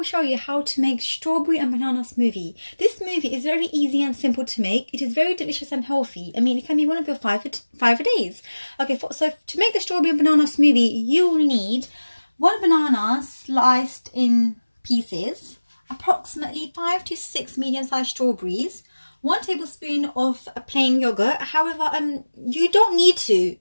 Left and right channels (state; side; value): inverted; both; correlation -1.00